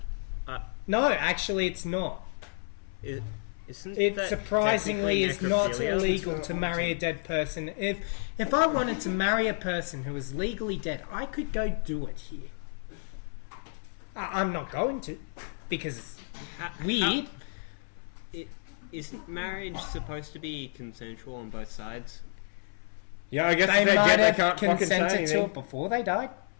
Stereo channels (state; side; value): silent; right; 58 dB below the other